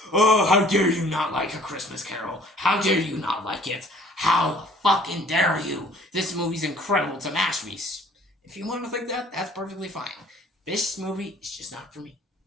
oh, how dare you not like A Christmas Carol? How dare you not like it? How fucking dare you? This movie's incredible. It's a masterpiece. If you want to think that, that's perfectly fine. This movie is just not for me.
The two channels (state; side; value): normal; both; correlation 0.55